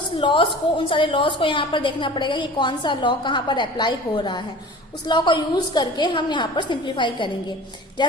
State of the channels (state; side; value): normal; both; correlation 0.40